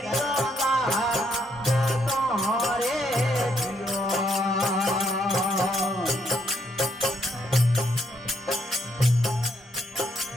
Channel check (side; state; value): both; normal; correlation 0.73